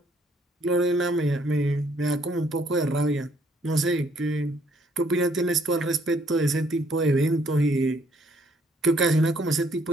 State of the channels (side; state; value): both; normal; correlation 0.66